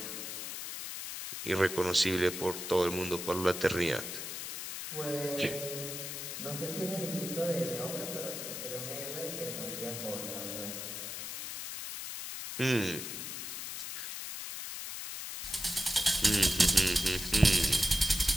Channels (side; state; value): left; noise; hiss, 6 dB below the sound